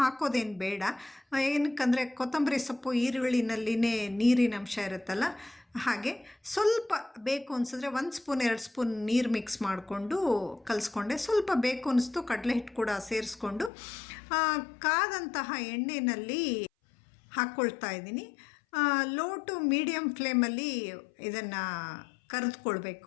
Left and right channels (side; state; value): right; drops out; at 13.7 s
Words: ಬೇಡ. ಏನಕ್ಕಂದರೆ ಕೊತ್ತಂಬರಿ ಸೊಪ್ಪು ಈರುಳ್ಳಿನಲ್ಲಿನೇ ನೀರಿನ ಅಂಶ ಇರುತ್ತಲ್ಲ, ಹಾಗೆ ಸ್ವಲ್ಪ ಬೇಕು ಅನಿಸಿದ್ರೆ 1 ಸ್ಪೂನ್ 2 ಸ್ಪೂನ್ ನೀರು ಮಿಕ್ಸ್ ಮಾಡಿಕೊಂಡು ಕಲಿಸ್ಕೊಂಡೆ. ಸ್ವಲ್ಪ ಬೇಕು ಅನಿಸ್ತು ಕಡಲೆ ಹಿಟ್ಟು ಕೂಡ ಸೇರಿಸ್ಕೊಂಡು ಕಾದಂತಹ ಎಣ್ಣೆಯಲ್ಲಿ ಹಾಕ್ಕೊಳ್ತಾ ಇದ್ದೀನಿ. ಲೋ ಟು ಮೀಡಿಯಮ್ ಫ್ಲೇಮಲ್ಲಿ ಇದನ್ನು